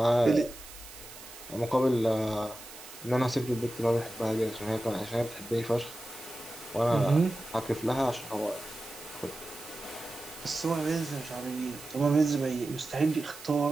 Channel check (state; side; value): noise; right; hiss, 16 dB below the sound